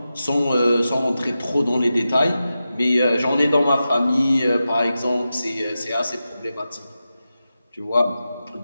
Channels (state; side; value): inverted; both; correlation -0.92